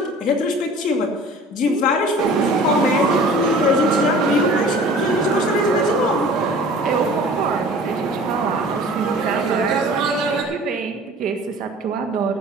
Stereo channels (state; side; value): normal; both; correlation 0.45